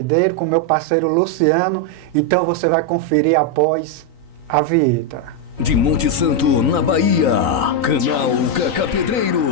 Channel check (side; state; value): left; late; 3.9 ms